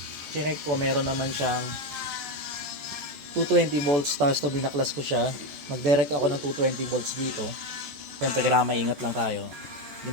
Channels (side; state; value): left; late; 14 ms